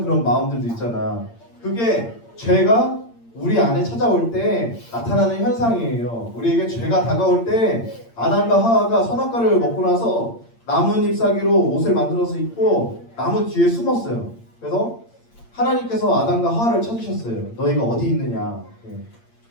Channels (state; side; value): late; right; 8.7 ms